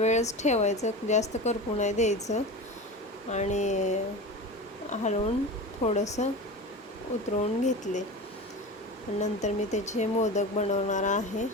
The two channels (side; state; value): both; normal; correlation 0.29